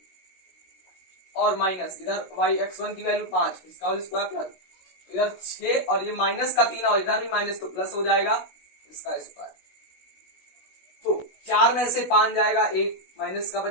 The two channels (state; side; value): late; right; 16 ms